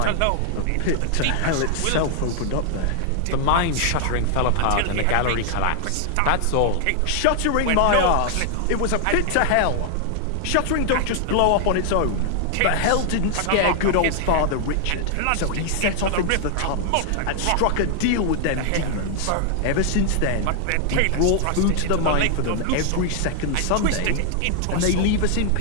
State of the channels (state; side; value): different; both; correlation 0.00